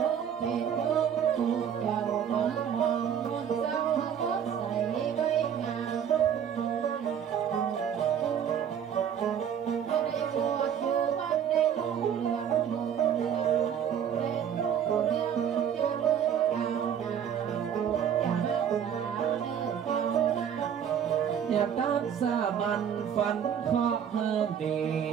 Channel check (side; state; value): left; quieter; 8.7 dB